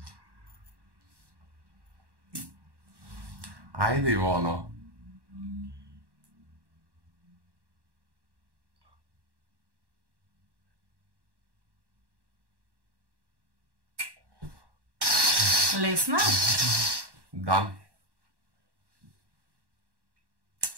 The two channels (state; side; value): late; left; 1.1 ms